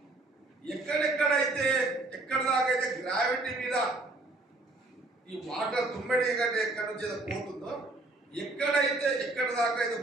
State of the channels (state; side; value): quieter; left; 3.0 dB